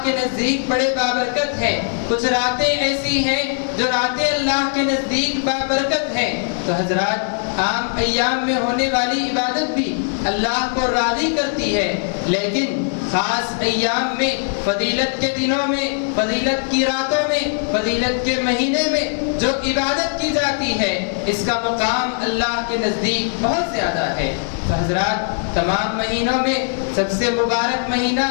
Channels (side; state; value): right; silent; 63 dB below the other